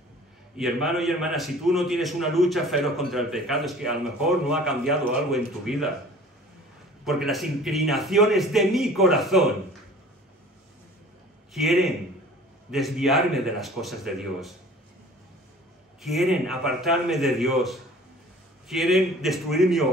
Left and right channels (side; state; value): both; normal; correlation 0.47